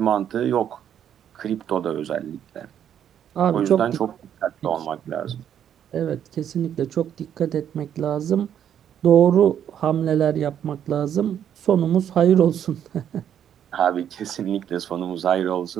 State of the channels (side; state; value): left; quieter; 9.5 dB